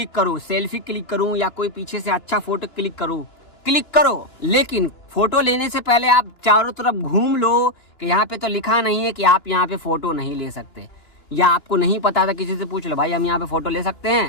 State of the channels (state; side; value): late; right; 2.9 ms